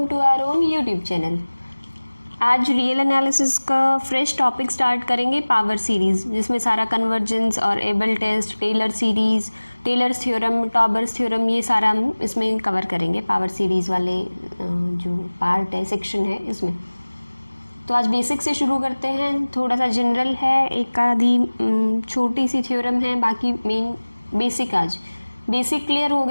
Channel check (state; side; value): inverted; both; correlation -1.00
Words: to our own YouTube channel. आज real analysis का fresh topic start करेंगे, power series, जिसमें सारा कन्वर्जेंस और Abel test, Taylor series, Taylor's theorem, Tauber's theorem, ये सारा हम इसमें कवर करेंगे। पावर सीरीज़ वाले जो पार्ट है, सेक्शन है इसमें। तो आज बेसिक से शुरू करते हैं। थोड़ा सा जनरल है, एक आधी छोटी सी थ्योरम है, बाकी मेन बेसिक। आज बेसिक क्लियर हो